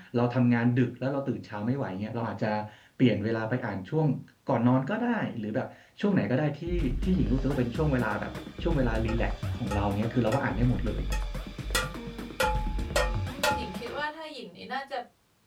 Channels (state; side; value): identical; both; correlation 1.00